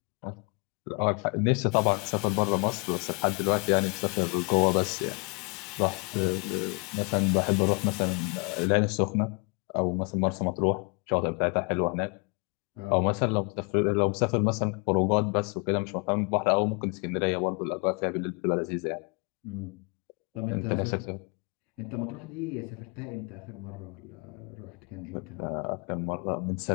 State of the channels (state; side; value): quieter; right; 34.2 dB